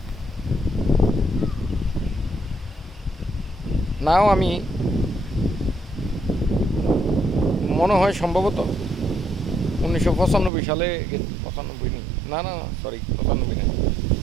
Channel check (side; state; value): left; drops out; at 10.5 s